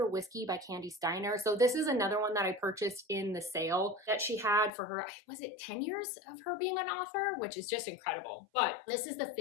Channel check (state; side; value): drops out; right; at 4.7 s